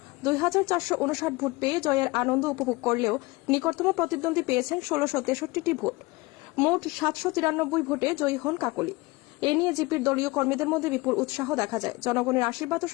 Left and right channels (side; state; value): right; quieter; 23.0 dB